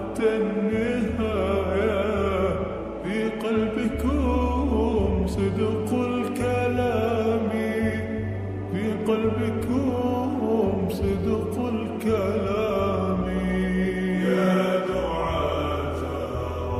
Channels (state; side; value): identical; both; correlation 1.00